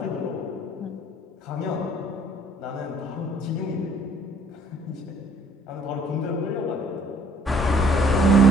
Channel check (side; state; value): both; normal; correlation 0.58